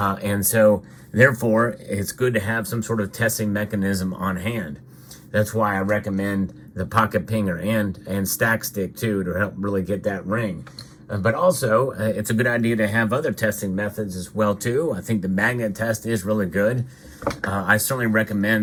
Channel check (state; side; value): identical; both; correlation 1.00